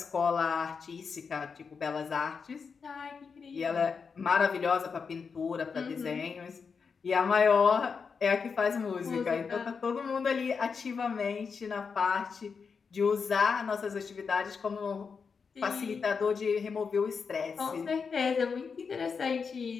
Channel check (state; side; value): quieter; right; 5.6 dB